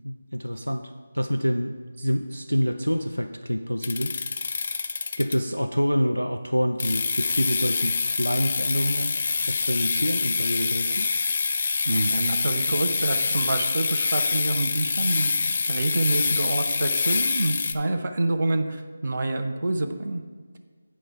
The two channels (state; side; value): inverted; both; correlation -0.94